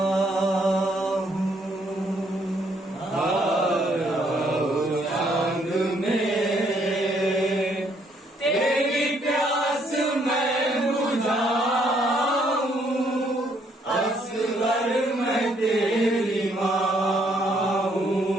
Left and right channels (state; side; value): normal; both; correlation 0.69